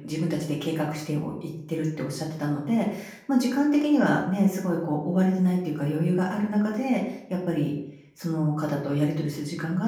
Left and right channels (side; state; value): both; identical; correlation 1.00